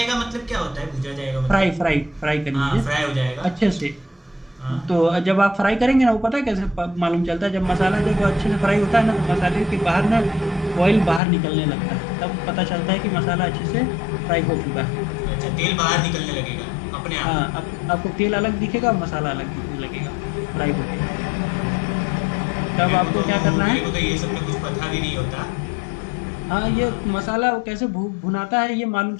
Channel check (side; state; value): right; drops out; at 11.2 s